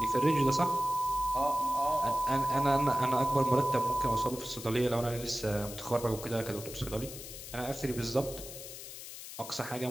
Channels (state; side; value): noise; left; hiss, 12 dB below the sound